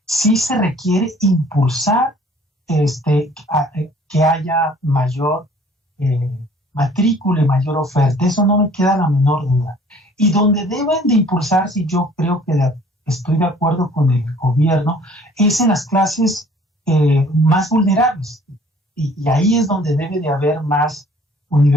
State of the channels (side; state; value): both; normal; correlation 0.54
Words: sí se requiere impulsar que haya mayor matrícula y mayor oferta. Eso no me queda la menor duda. Y donde deben de impulsarse, y yo creo que estoy de acuerdo con el gobierno, es en las clases más vulnerables. Y ahí es donde debe de haber más